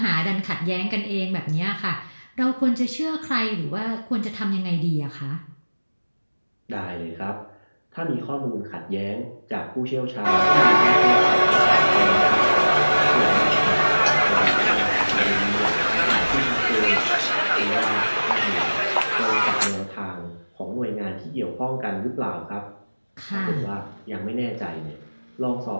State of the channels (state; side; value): inverted; both; correlation -1.00